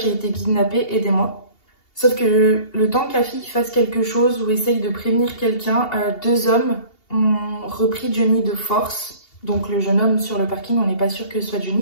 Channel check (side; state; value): right; late; 2.8 ms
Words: j'ai été kidnappé, aidez-moi ». Sauf que le temps que la fille fasse quelque chose ou essaye de prévenir quelqu'un, 2 hommes ont repris Johnny de force, donc le jeune homme sur le parking, on n'est pas sûr que ce soit